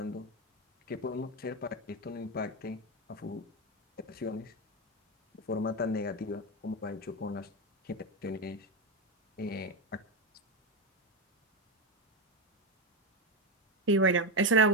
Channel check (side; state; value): both; normal; correlation 0.12